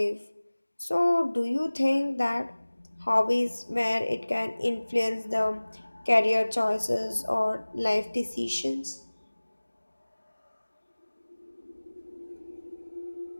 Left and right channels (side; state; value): both; inverted; correlation -1.00